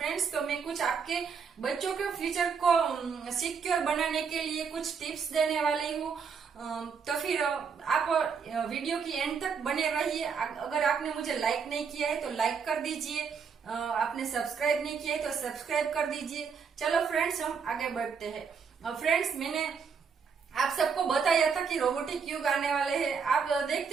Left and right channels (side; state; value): left; quieter; 6.1 dB